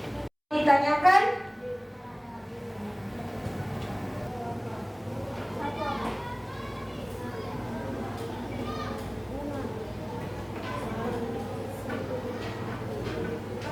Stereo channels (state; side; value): identical; both; correlation 1.00